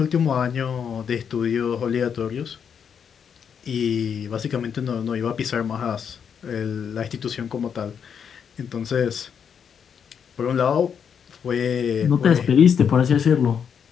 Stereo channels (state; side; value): quieter; right; 7.4 dB